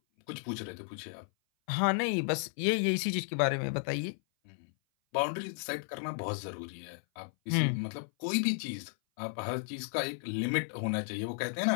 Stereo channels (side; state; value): right; silent; 55 dB below the other